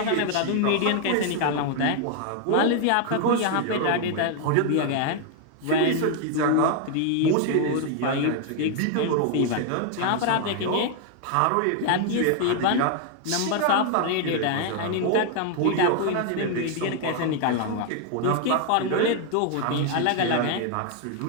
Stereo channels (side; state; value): both; different; correlation 0.00